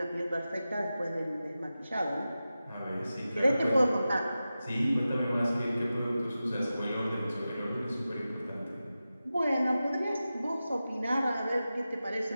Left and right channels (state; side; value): inverted; both; correlation -0.93